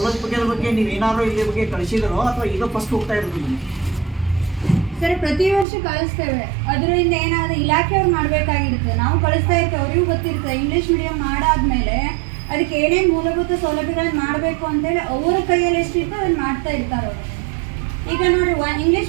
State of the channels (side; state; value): left; drops out; at 5.7 s